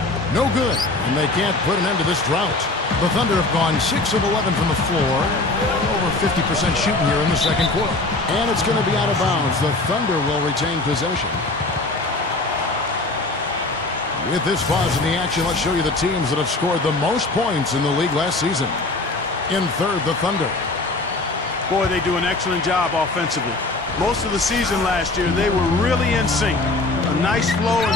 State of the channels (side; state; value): right; quieter; 3.1 dB